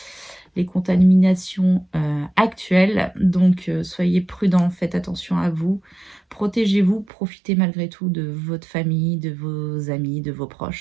les contaminations actuelles. Donc soyez prudents, faites attention à vous, protégez-vous, profitez malgré tout de votre famille, de vos amis, de vos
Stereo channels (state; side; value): drops out; left; at 7.1 s